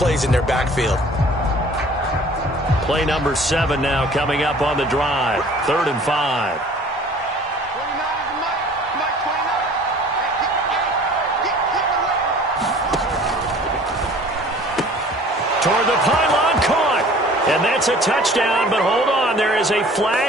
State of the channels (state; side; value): normal; both; correlation 0.49